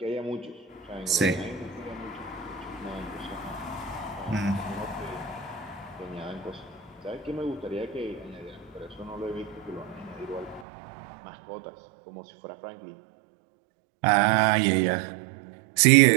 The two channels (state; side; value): drops out; left; at 10.7 s